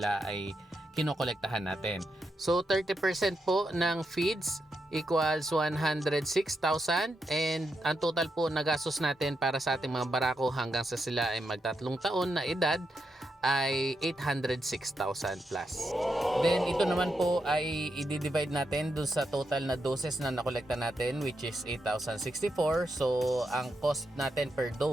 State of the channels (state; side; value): normal; both; correlation 0.84